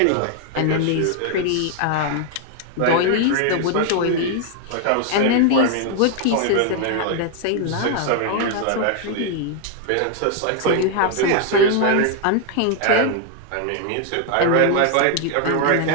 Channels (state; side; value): different; both; correlation 0.00